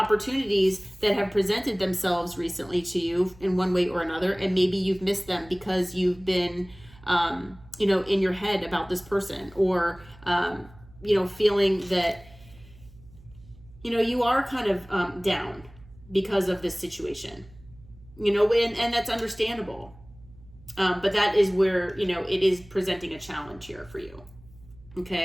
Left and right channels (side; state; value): right; noise; hum, 23 dB below the sound